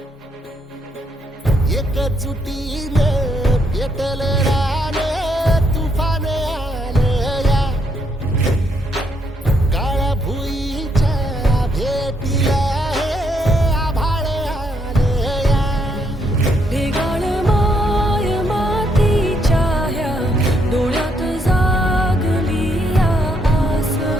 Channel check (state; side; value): normal; both; correlation 0.74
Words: एकजुटीनं पेटल रान तुफान आलया काळ्या भुईच्या भेटीला हे आभाळ आलया ढेगाळ माय मातीच्या ह्या डोळ्यात जागली या आस